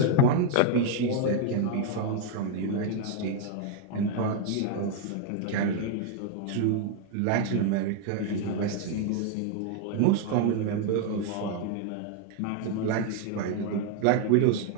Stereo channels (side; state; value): both; different; correlation 0.00